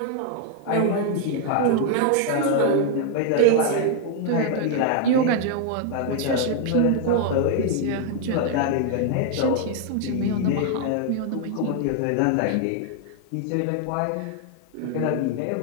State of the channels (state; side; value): different; both; correlation 0.00